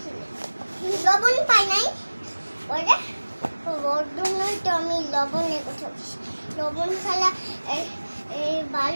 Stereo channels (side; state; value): both; inverted; correlation -1.00